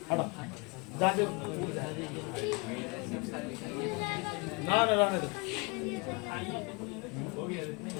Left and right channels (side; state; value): right; quieter; 28.2 dB